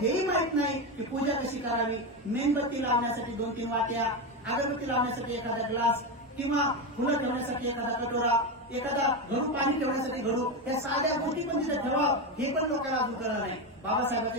माहित नाही की पूजा कशी करावी. मेणबत्ती लावण्यासाठी 2-3 वाट्या, अगरबत्ती लावण्यासाठी एखादा ग्लास किंवा फुलं ठेवण्यासाठी एखादा कटोरा, एखादा घडू पाणी ठेवण्यासाठी घडू, या साध्या गोष्टी पण तिथे ठेवावं हे पण लोकांना अजून कळलं नाही. बाबासाहेबांचे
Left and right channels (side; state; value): both; normal; correlation 0.13